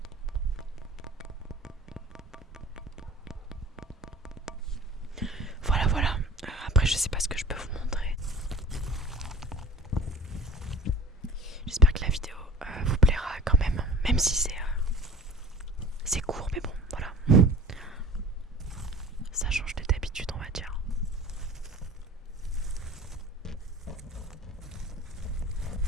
Voilà, voilà. Après, je sais pas ce que je peux vous montrer. J'espère que la vidéo vous plaira quand même. Même si c'est court, mais bon, voilà. Ça change de d'habitude, on va dire.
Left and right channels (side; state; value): both; normal; correlation 0.43